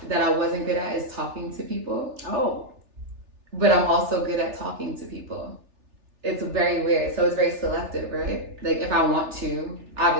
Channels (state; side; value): late; left; 3.4 ms